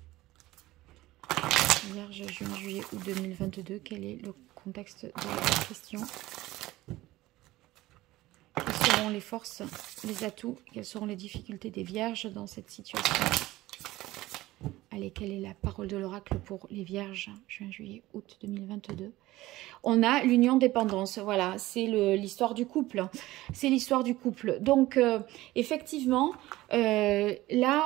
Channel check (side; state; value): left; quieter; 17.5 dB